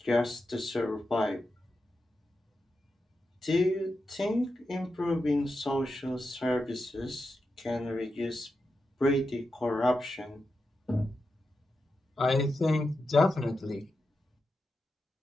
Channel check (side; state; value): both; normal; correlation 0.89